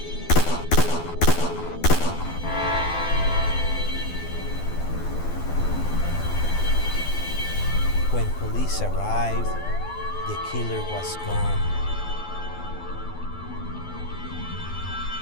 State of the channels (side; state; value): right; late; 12 ms